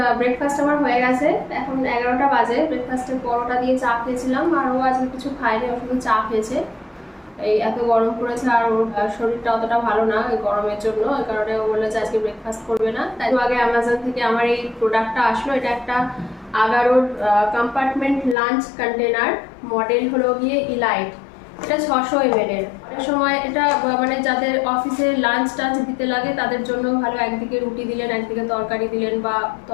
ব্রেকফাস্ট আমার হয়ে গেছে। এখন 11টা বাজে। ব্রেকফাস্টে পরোটা দিয়ে চা খেয়েছিলাম, আর ও আজকে কিছু খায়নি, ও শুধু চা খেয়েছে। এই এত গরম পড়েছে, আর ওর শরীরটা অতটা ভালো না এই গরমের জন্য, এই কারণে ও বললো যে আজকে ব্রেকফাস্ট করবে না। তাই আগে অ্যামাজন থেকে আমার এই প্রোডাক্টটা আসলো। এটা একটা আগারোর কম্পার্টমেন্ট লাঞ্চ কন্টেনার, মডেল হলো গিয়ে ইলাইট। এটা 600 ml এর। অনেক সময় এটা মানে যাদের অফিসে লাঞ্চ টাঞ্চ দিতে লাগে তাদের জন্য ভালো। একদিকে রুটি দিলেন, একদিকে তরকারি দিলেন, বা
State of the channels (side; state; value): right; drops out; at 18.4 s